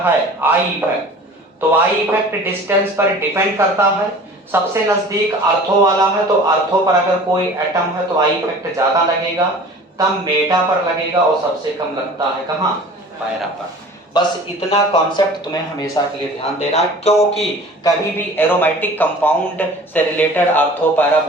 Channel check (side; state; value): both; normal; correlation 0.43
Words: है आई इफेक्ट, तो आई इफेक्ट डिस्टेंस पर डिपेंड करता है। सबसे नजदीक ऑर्थो वाला है तो ऑर्थो पर अगर कोई एटम है तो आई इफेक्ट ज्यादा लगेगा, तब मेटा पर लगेगा, और सबसे कम लगता है कहां, पैरा पर। बस इतना कॉन्सेप्ट तुम्हें हमेशा के लिए ध्यान देना है, क्योंकि कभी भी एरोमेटिक कंपाउंड से रिलेटेड ऑर्थो पैरा